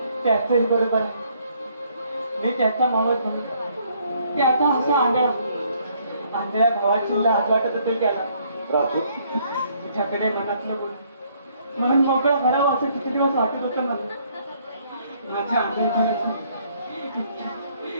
त्याचंही बरोबर आहे. मी त्याचा मावस भाऊ, त्याचा असा आंधळ्या भावाची लाज वाटत असेल त्याला. राजू, तुझ्याकडे मनातलं बोल म्हणून मोकळं करावं असं किती दिवस वाटत होतं मला. माझ्या आंधळेपणाचं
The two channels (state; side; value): inverted; both; correlation -0.66